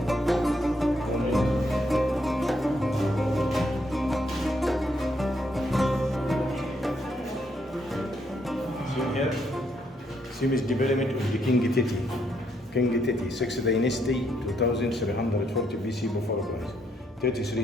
Same is development of the King Titi. King Titi, 6th dynasty, 2340 BC before Christ.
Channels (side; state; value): both; normal; correlation 0.74